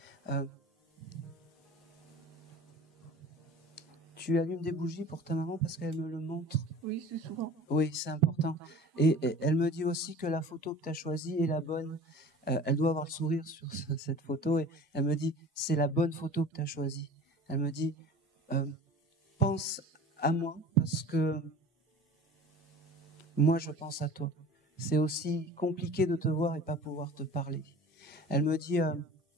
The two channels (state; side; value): normal; both; correlation 0.42